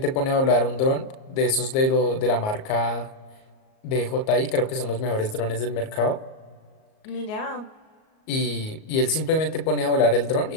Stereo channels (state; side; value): late; right; 38 ms